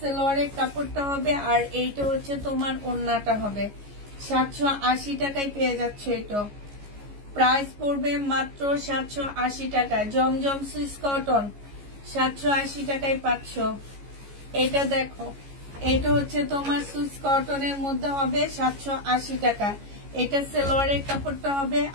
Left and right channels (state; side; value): late; left; 14 ms